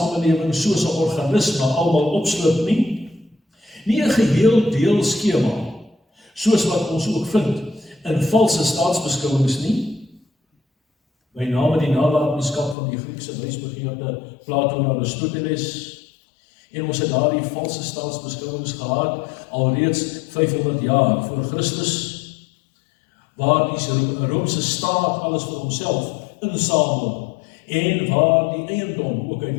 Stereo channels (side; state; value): right; drops out; at 12.8 s